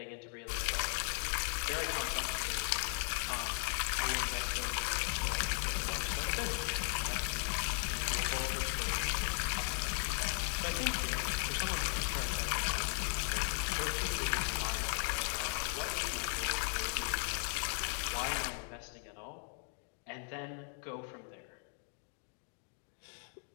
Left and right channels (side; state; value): right; silent; 53 dB below the other